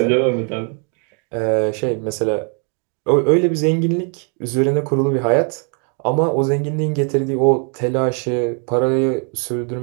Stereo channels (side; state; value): left; quieter; 40.0 dB